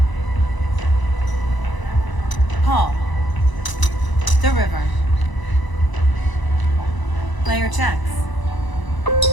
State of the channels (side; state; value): right; late; 1.0 ms